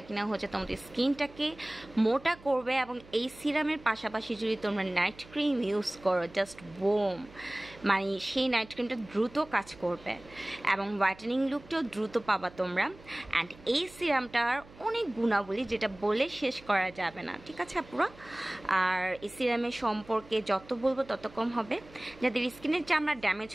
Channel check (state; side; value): noise; right; hum, 22 dB below the sound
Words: কিনা হচ্ছে তোমাদের স্কিনটাকে মোটা করবে। এবং এই সিরামের পাশাপাশি যদি তোমরা নাইট ক্রিম ইউজ করো, জাস্ট বোম, মানে সেই নাইট ক্রিমটা দ্রুত কাজ করবে এবং হোয়াইটেনিং লুকটাও দ্রুত পাবা তোমরা। অ্যান্ড এই সিরামটার অনেক গুণাবলী যেটা বলে শেষ করা যাবে না, ঠিক আছে আপুরা। আর এই সিরামের সম্পর্কে যত বলবো তত কম হবে। যাদের স্কিনের চামড়া ড্যামেজ